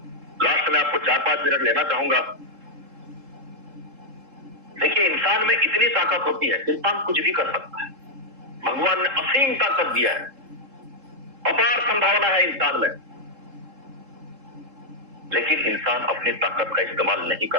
लास्ट में आपको 4-5 मिनट लेना चाहूंगा। देखिए, इंसान में इतनी ताकत होती है, इंसान कुछ भी कर सकता है। भगवान ने असीम ताकत दिया है, अपार संभावना है इंसान में, लेकिन इंसान अपनी ताकत का इस्तेमाल नहीं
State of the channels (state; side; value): late; left; 3.7 ms